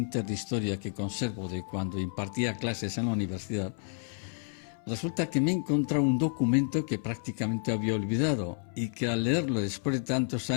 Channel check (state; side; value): silent; right; 58 dB below the other